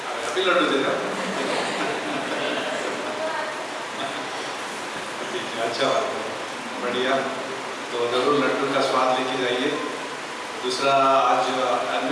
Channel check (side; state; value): both; identical; correlation 1.00